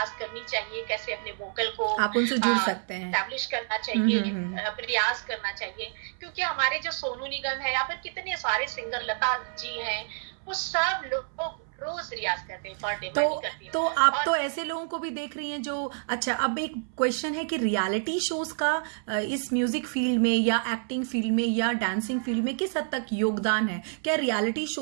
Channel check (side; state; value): left; silent; 59 dB below the other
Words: करनी चाहिए, कैसे अपने वोकल को आप उनसे जुड़ सकते हैं। एस्टैब्लिश करना चाहिए, हम्म। रियाज करना चाहिए, क्योंकि हमारे जो सोनू निगम है या फिर कितने सारे सिंगर, लता जी हैं, वो सब लोग रोज रियाज करते हैं, पर डे तो मैं करती हूँ। तो आप और तो ऐसे लोगों को भी देख रही हैं जो, अच्छा अब एक क्वेश्चन है कि रियलिटी शोज का इस म्यूजिक फील्ड में या एक्टिंग फील्ड में या डांसिंग फील्ड में किस हद तक योगदान है? क्या रियलिटी